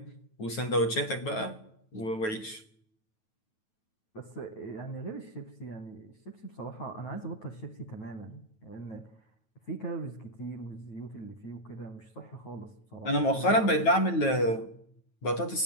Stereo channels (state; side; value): late; right; 9.2 ms